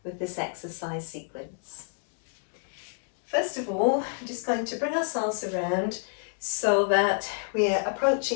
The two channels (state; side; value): silent; right; 59 dB below the other